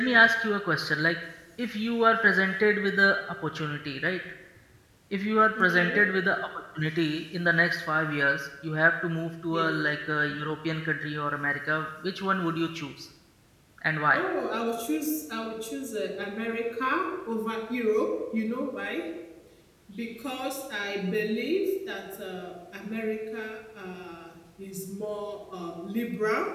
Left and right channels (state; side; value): identical; both; correlation 1.00